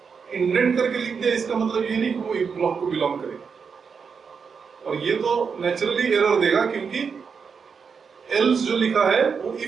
इंडेंट करके लिख दिया, इसका मतलब ये नहीं कि वो इफ ब्लॉक को बिलोंग करे। और ये तो नेचुरली एरर देगा, क्योंकि एल्स जो लिखा है वो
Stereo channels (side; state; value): left; quieter; 5.9 dB